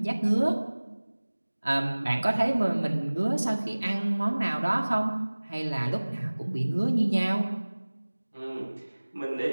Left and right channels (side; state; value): both; inverted; correlation -1.00